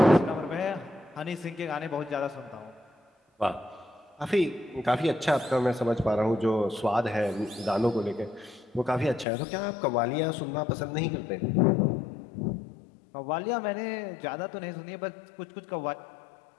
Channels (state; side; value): drops out; right; at 9.2 s